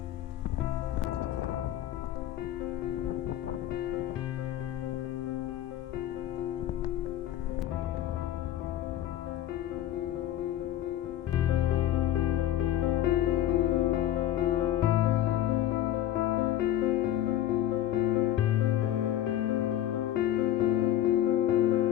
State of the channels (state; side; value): quieter; right; 12.4 dB